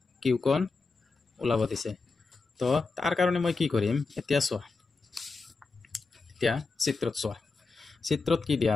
কোণ ওলাব দিছে তো তাৰ কাৰণে মই কি কৰিম এতিয়া চোৱা এতিয়া চিত্ৰত কি দিয়া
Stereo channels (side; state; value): right; quieter; 4.1 dB